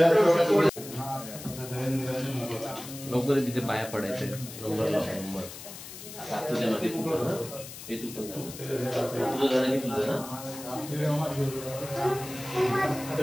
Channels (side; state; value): left; noise; hiss, 13 dB below the sound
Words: लवकर तिथे पाया पडायचे. नंबर लाव नंबर. तुझ्या मध्ये हे तू पण तुझं झालं की तुझं ना.